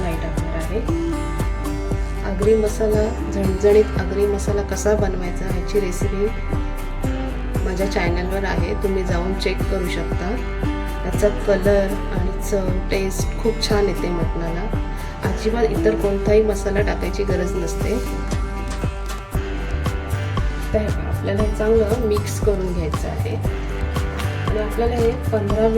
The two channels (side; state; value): both; identical; correlation 1.00